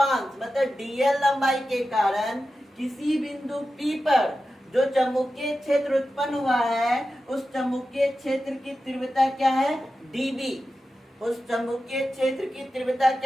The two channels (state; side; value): normal; both; correlation 0.92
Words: मतलब डीएल लंबाई के कारण किसी बिंदु पी पर जो चुंबकीय क्षेत्र उत्पन्न हुआ है, उस चुंबकीय क्षेत्र की तीव्रता क्या है, डीबी। उस चुंबकीय क्षेत्र की तीव्रता